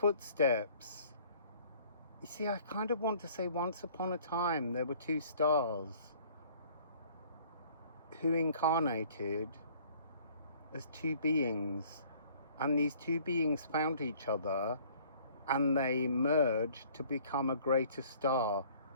You see, I kind of want to say once upon a time there were two stars who incarnated as two beings, and these two beings found each other and they merged to become a greater star,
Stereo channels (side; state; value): both; inverted; correlation -0.55